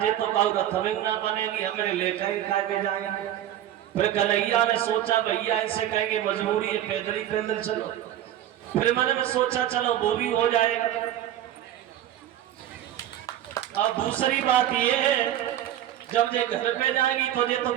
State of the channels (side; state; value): left; quieter; 11.9 dB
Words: ये तो कहो रथमिंग ना बनेगी, हमें लेकर ही खा के जाएंगे। फिर कन्हैया ने सोचा भैया इनसे कहेंगे मजबूरी है, पैदल ही पैदल चलो। फिर मैंने में सोचा चलो वो भी हो जाएगा। अब दूसरी बात ये है जब ये घर पे जाएगी तो ये तो